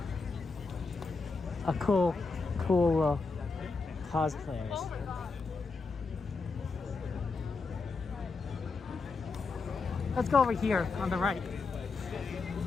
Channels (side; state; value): right; quieter; 4.2 dB